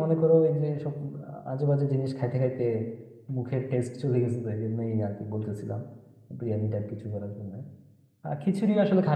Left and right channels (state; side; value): identical; both; correlation 1.00